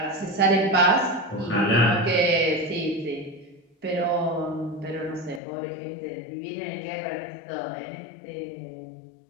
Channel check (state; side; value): drops out; right; at 5.4 s